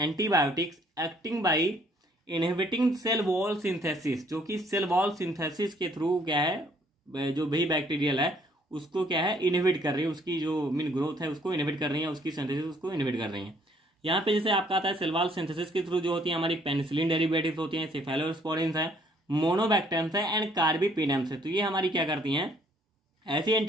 acting by inhibiting cell wall synthesis, जो कि सेल वॉल सिंथेसिस के थ्रू क्या है जो भी बैक्टीरियल है उसको क्या है इनहिबिट कर रही है, उसकी जो मीन ग्रोथ है उसको इनहिबिट कर रही है, उसकी सिंथेसिस उसको इनहिबिट कर रही है। यहाँ पे जैसे आपका आता है सेल वॉल सिंथेसिस के थ्रू जो होती है हमारी पेनिसिलिन डेरिवेटिव्स होती हैं, सेफेलोस्पोरिन्स है, मोनोबैक्टेरियम्स है एंड कार्बीपेडेम्स है। तो ये हमारी क्या करती हैं, ऐसी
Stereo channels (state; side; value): normal; both; correlation 0.63